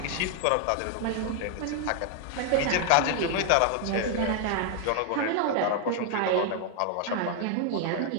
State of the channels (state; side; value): different; both; correlation 0.00